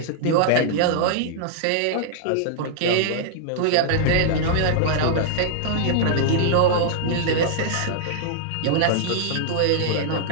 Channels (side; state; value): both; different; correlation -0.01